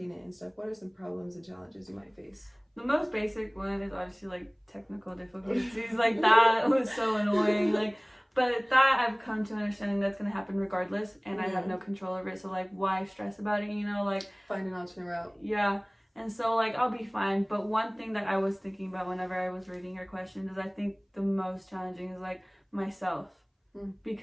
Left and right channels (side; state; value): both; identical; correlation 1.00